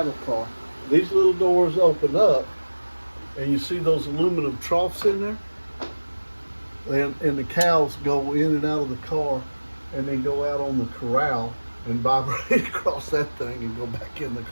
car. These little doors open up, and you see those aluminum troughs in there, and the cows go in and out of the car, and then go out on the corral and vibrate across that thing and go back in the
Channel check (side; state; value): both; inverted; correlation -1.00